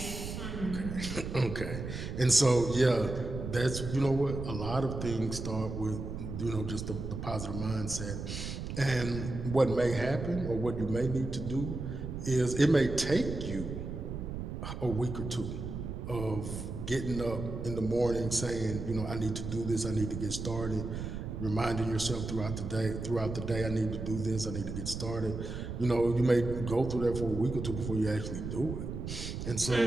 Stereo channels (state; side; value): noise; right; rumble, 6 dB below the sound